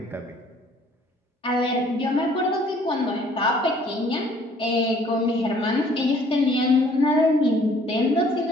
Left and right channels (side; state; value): both; normal; correlation 0.58